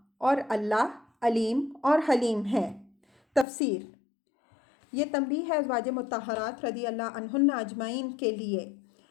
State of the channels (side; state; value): right; drops out; at 3.5 s